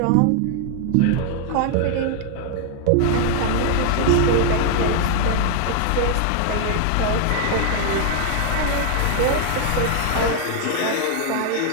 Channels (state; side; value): different; both; correlation 0.00